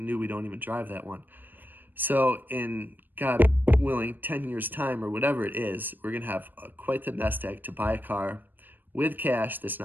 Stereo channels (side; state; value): left; late; 0.091 ms